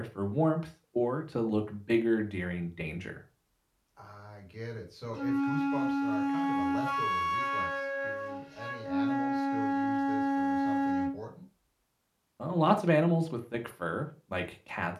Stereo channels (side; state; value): both; identical; correlation 1.00